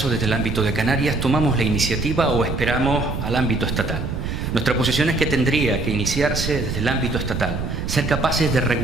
desde el ámbito de Canarias, ¿tomamos la iniciativa o esperamos al ámbito estatal? Nuestra posición es que tendría que iniciarse desde el ámbito estatal, ser capaces de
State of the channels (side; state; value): right; noise; rumble, 4 dB below the sound